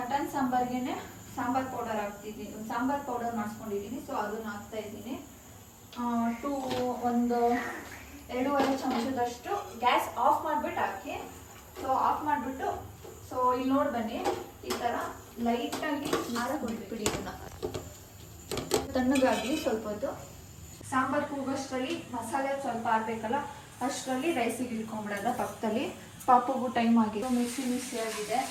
ಸಾಂಬಾರ್ಗೆ ಸಾಂಬಾರ್ ಪೌಡರ್ ಹಾಕ್ತಿದ್ದೀನಿ, ಸಾಂಬಾರ್ ಪೌಡರ್ ಮಾಡಿಸ್ಕೊಂಡಿದ್ದೀನಿ. ಸೊ ಅದನ್ನ ಹಾಕ್ತಾ ಇದ್ದೀನಿ. ಒಂದು 2.5 ಚಮಚದಷ್ಟು ಗ್ಯಾಸ್ ಆಫ್ ಮಾಡಿಬಿಟ್ಟು ಹಾಕಿ. ಸೊ ಆಫ್ ಮಾಡಿಬಿಟ್ಟು, ಸೊ ಇಲ್ಲಿ ನೋಡಿ ಬನ್ನಿ, ಈ ಥರ ಲೈಟಾಗಿ ಬಿಟ್ಬಿಡಿ. ಇದನ್ನ ತಣ್ಣಗಾಗಲಿ ಸ್ವಲ್ಪ ಹೊತ್ತು. ಸಾಂಬಾರು ಕೂಗೋಷ್ಟರಲ್ಲಿ ಮಸಾಲೆ ಸ್ವಲ್ಪ ಆಡಬೇಕಲ್ಲ, ಅಷ್ಟರಲ್ಲಿ ರೈಸಿಗೆ ಇಟ್ಕೊಂಡ್ಬಿಡೋದ ಪಕ್ಕದಲ್ಲಿ. ಪಾಪುಗೂ ಟೈಮ್ ಆಗಿದೆ, ಮಿಕ್ಸಿ ಆಗಿದೆ,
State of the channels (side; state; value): both; identical; correlation 1.00